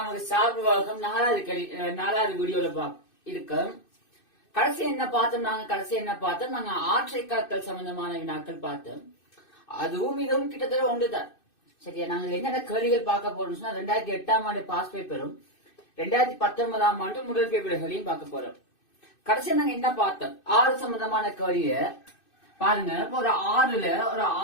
சார்புவாகம் நாலாவது வீடியோல இருக்கு. கடைசி என்ன பார்த்தோம் நாங்க ஆற்றை காத்தல் சம்பந்தமான வினாக்கள் பார்த்தோம். அதுவும் இதுவும் கிட்டத்தட்ட ஒன்றுதான். சரியா, நாங்க என்னென்ன கேள்விகள் பார்க்க போறோம் சொன்னா 2008ஆம் ஆண்டு பாஸ் பேப்பரும் 2019ஆம் ஆண்டு முதல் பேப்பர்களையும் பார்க்க போறோம். கடைசியா நாங்க என்ன பார்த்தோம், 6 சம்பந்தமான கேள்விய பாருங்க. ஒரு ஆறுல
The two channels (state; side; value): late; right; 2.6 ms